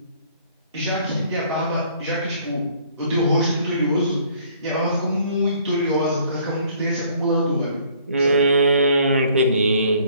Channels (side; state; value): both; inverted; correlation -0.59